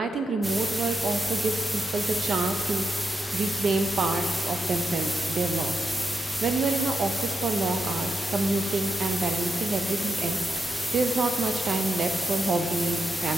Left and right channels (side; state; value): both; normal; correlation 0.86